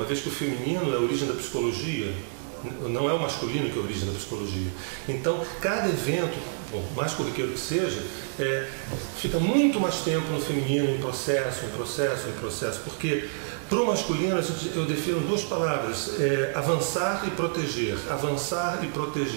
vez que o feminino é a origem da psicologia, não é o masculino que é a origem da psicologia. Então, cada evento, por mais corriqueiro que seja, fica muito mais tempo no feminino, em processo, porque para o masculino eu defino duas palavras, avançar e proteger, avançar e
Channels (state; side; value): silent; left; 60 dB below the other